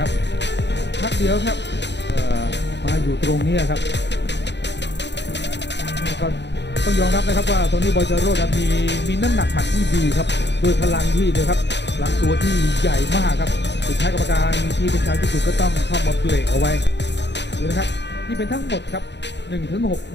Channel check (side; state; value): right; late; 0.51 ms